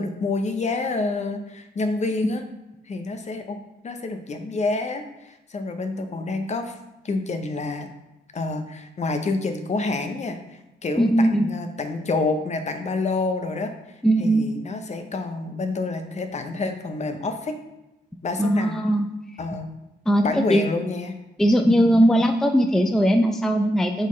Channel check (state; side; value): normal; both; correlation 0.79